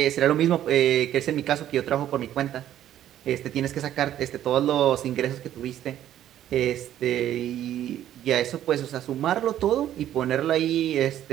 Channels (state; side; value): quieter; left; 11.7 dB